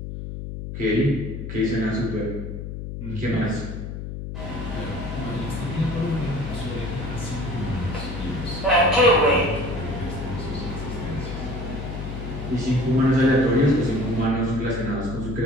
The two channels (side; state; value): left; noise; hum, 7 dB below the sound